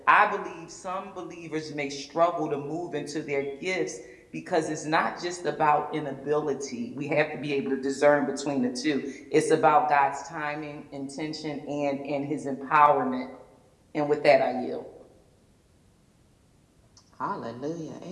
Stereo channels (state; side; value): identical; both; correlation 1.00